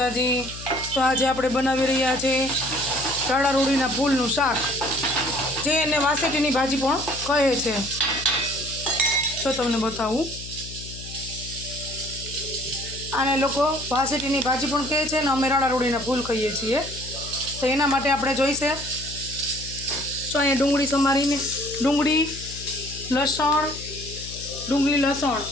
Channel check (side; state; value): left; noise; hum, 13 dB below the sound